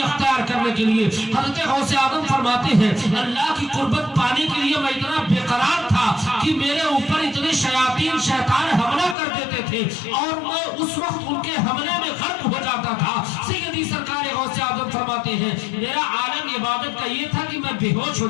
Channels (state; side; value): drops out; right; at 9.2 s